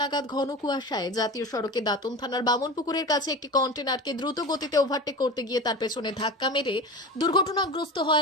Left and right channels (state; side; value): normal; both; correlation 0.30